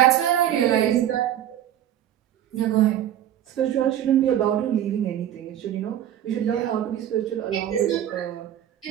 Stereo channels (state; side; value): quieter; left; 11.3 dB